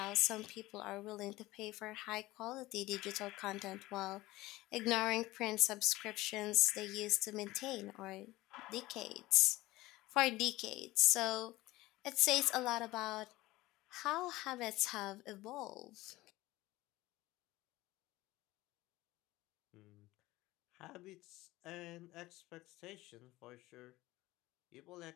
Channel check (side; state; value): right; quieter; 18.6 dB